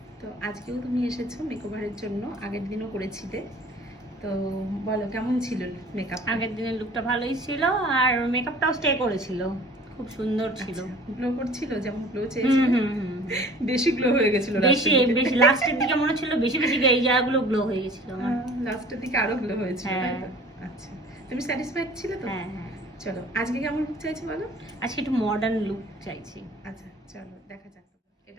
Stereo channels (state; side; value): normal; both; correlation 0.47